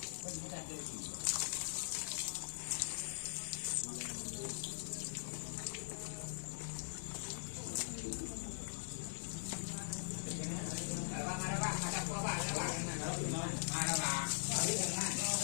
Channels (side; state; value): right; silent; digital silence